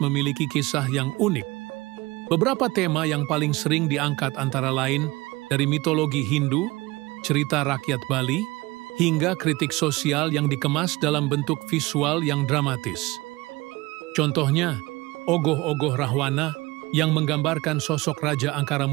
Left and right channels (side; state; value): left; quieter; 21.4 dB